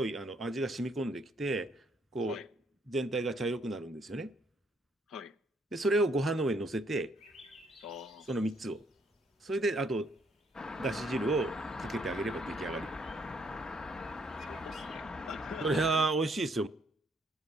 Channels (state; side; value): normal; both; correlation 0.69